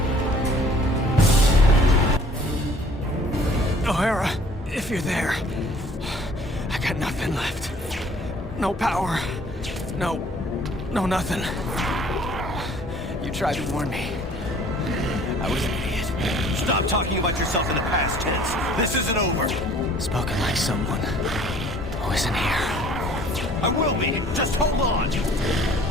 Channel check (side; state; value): both; normal; correlation 0.54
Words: O'Hara, if you're there, I got nothing left. No power. No nothing. You tried to warn me. I was an idiot. Stop talking about yourself in the past tense. This isn't over. Spoken like someone who isn't here. I will be. Just hold on.